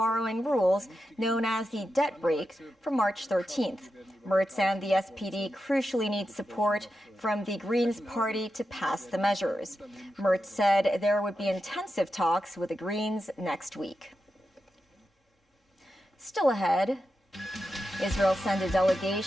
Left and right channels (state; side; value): normal; both; correlation 0.89